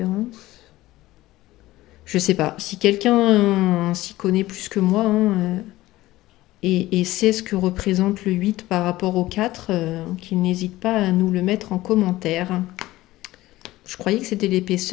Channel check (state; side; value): quieter; right; 17.1 dB